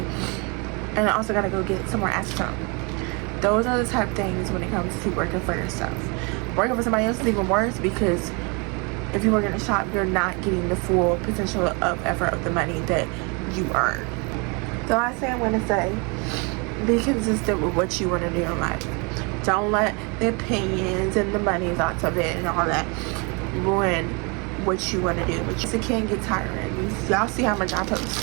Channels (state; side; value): quieter; left; 31.6 dB